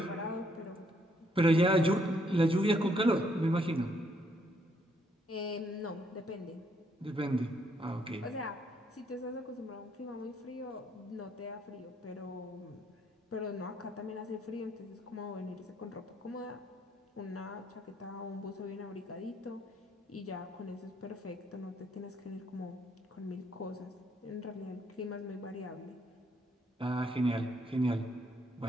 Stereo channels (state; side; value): normal; both; correlation 0.71